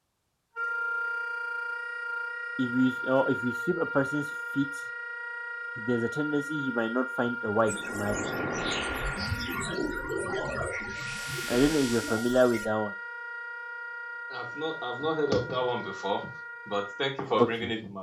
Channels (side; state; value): both; identical; correlation 1.00